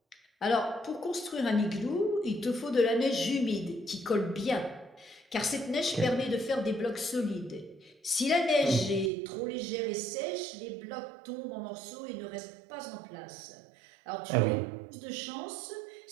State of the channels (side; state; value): left; drops out; at 9.1 s